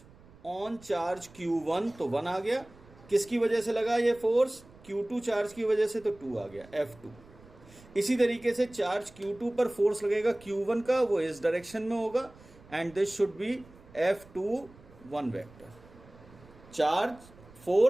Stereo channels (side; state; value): right; noise; rumble, 23 dB below the sound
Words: ऑन चार्ज Q1 तो 1 आ गया. किसकी वजह से लगा ये फोर्स? Q2 चार्ज की वजह से, तो 2 आ गया, F2. इसी तरीके से चार्ज Q2 पर फोर्स लगेगा Q1 का, वो इस डायरेक्शन में होगा, and this should be F21 vector. Charge